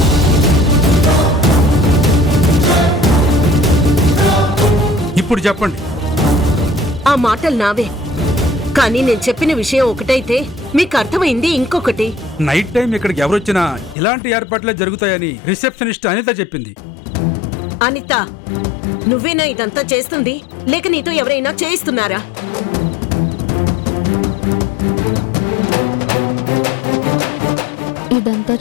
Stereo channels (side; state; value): right; drops out; at 14.0 s